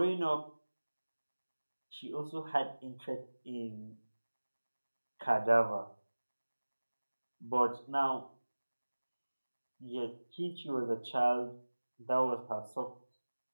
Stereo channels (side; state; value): both; inverted; correlation -1.00